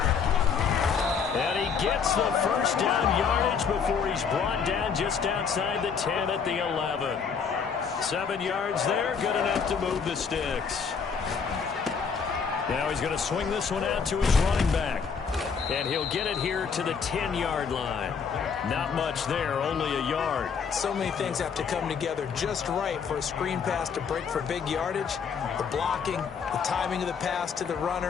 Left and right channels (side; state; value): right; quieter; 6.2 dB